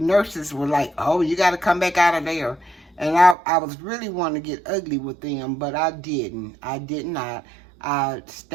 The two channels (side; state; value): left; drops out; at 3.4 s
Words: were like, oh, you got to come back out of there. And I was really wanting to get ugly with them, but I didn't. I did not. I